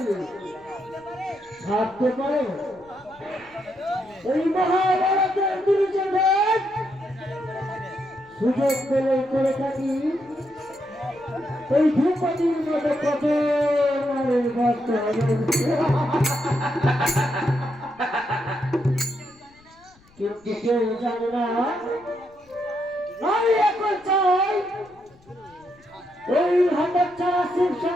ভাবতে পারো এই মহাভারতের দুর্যোধন সুযোগ পেলে করে থাকি এই ধ্রুপদীর মতো কত নারীর ভক্ত হবে। কিন্তু কেউ জানে না আমি এখন চাই ওই হতচ্ছাড়া শিব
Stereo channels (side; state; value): left; noise; rumble, 29 dB below the sound